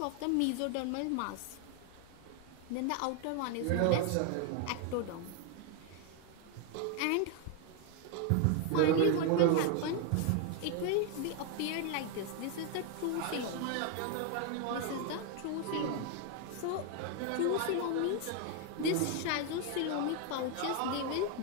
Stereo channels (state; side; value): different; both; correlation 0.01